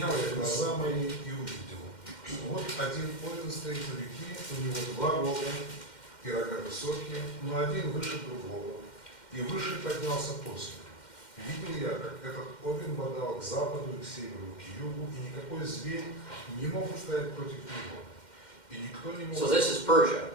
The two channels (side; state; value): right; late; 2.1 ms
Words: я глаза мои и увидел. Вот один овен стоит у реки, у него 2 рога, и рога высокие, но один выше другого, и выше поднялся после. Видел я, как этот овен бодал к западу, и к северу, и к югу, и никакой зверь не мог устоять против него. И никто не мог... So this is Persia.